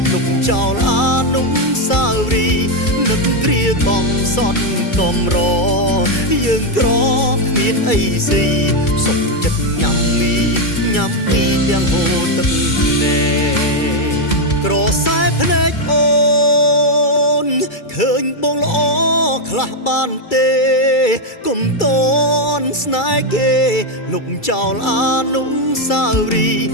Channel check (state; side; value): late; right; 2.3 ms